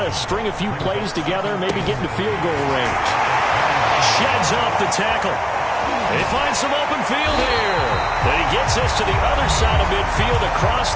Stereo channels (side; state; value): both; identical; correlation 1.00